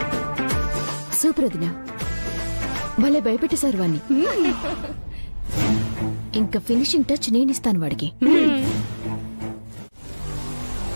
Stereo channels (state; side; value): inverted; both; correlation -1.00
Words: సూపర్ వదిన, భలే భయపెట్టేశారు వాణ్ణి. ఇంకా ఫినిషింగ్ టచ్ నేనిస్తాను వాడికి.